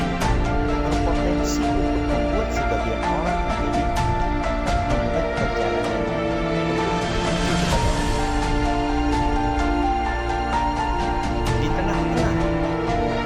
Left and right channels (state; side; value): identical; both; correlation 1.00